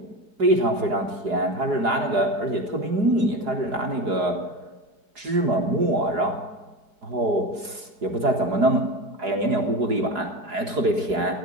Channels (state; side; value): late; left; 4.8 ms